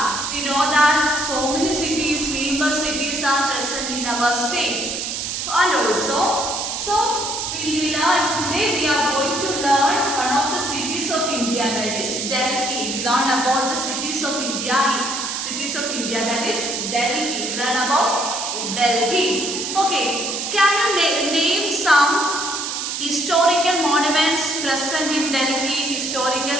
We know that so many cities, famous cities are present in our state. And also, so we learn today we are going to learn one of the cities of India, that is Delhi. We learn about the cities of India. Cities of India, that is Delhi. We learn about Delhi. Okay, can you name some historical monuments present in Delhi? Historical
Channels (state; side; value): noise; right; hiss, 3 dB below the sound